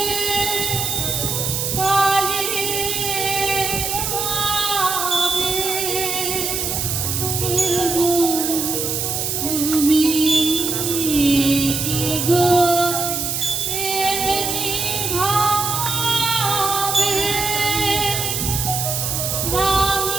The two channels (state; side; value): noise; right; hiss, 1 dB below the sound